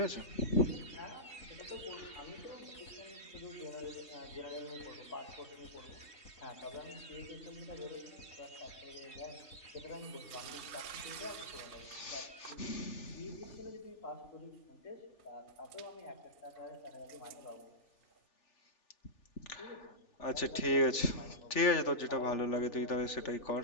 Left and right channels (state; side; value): late; right; 3.4 ms